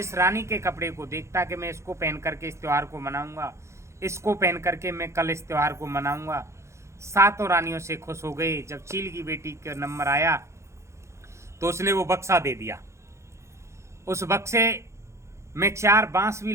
रानी के कपड़े को देखता कि मैं इसको पहन करके इस त्यौहार को मनाऊंगा, इसको पहन करके मैं कल इस त्यौहार को मनाऊंगा, सातों रानियों से खुश हो गए। जब चील की बेटी का नंबर आया तो उसने वो बक्सा दे दिया। उस बक्से में 4 बांस भी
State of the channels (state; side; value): late; left; 0.14 ms